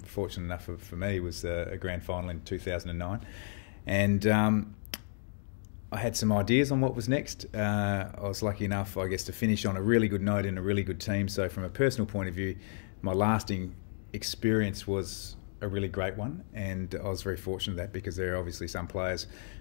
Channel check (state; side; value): silent; right; digital silence